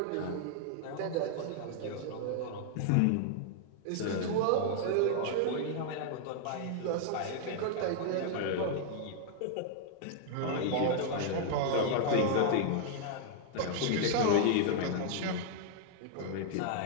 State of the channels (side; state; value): both; different; correlation 0.00